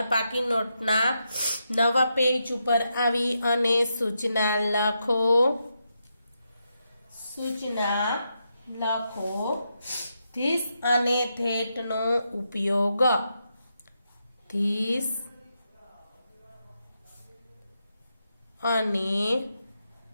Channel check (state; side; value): inverted; both; correlation -0.84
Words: પાકી નોટના નવા પેજ ઉપર આવી અને સૂચના લખો. ધીસ અને ધેટનો ઉપયોગ. ધીસ અને